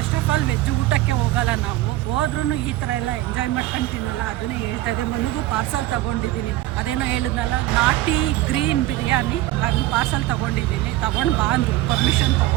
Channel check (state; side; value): quieter; left; 15.9 dB